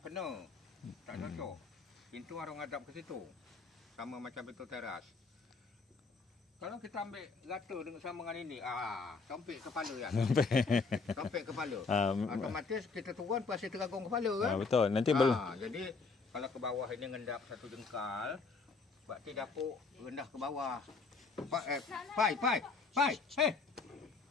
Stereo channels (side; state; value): right; quieter; 4.4 dB